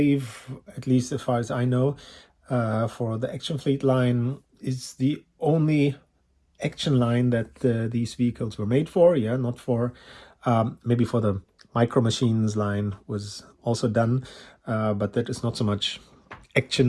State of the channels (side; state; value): both; identical; correlation 1.00